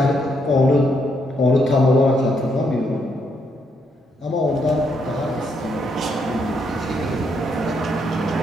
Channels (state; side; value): normal; both; correlation 0.75